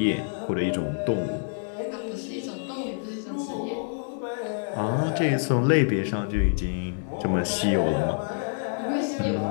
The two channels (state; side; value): silent; right; digital silence